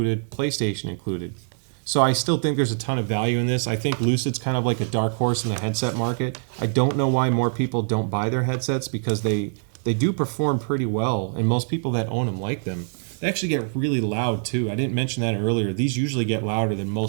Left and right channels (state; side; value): silent; left; digital silence